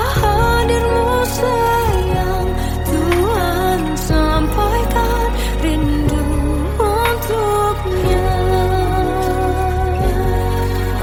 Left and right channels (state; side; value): identical; both; correlation 1.00